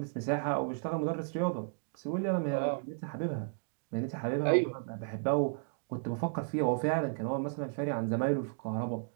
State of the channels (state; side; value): silent; left; digital silence